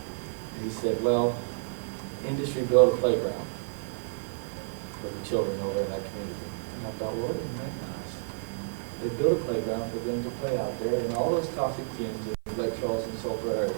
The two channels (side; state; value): left; silent; digital silence